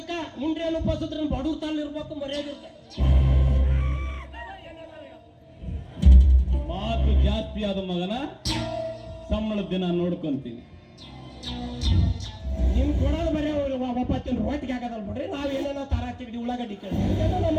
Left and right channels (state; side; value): identical; both; correlation 1.00